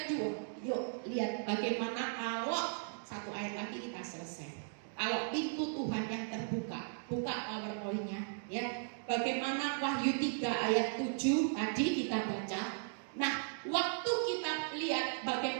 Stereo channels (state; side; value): silent; left; digital silence